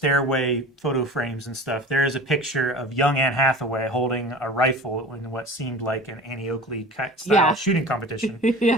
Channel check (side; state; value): both; normal; correlation 0.38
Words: photo frames and stuff, there is a picture of young Anne Hathaway holding a rifle in what seemed like an Annie Oakley style shooting competition.